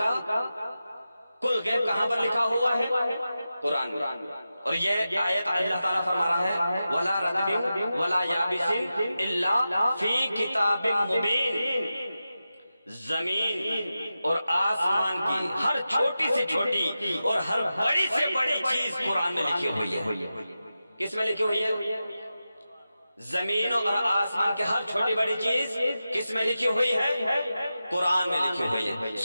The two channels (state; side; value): inverted; both; correlation -0.92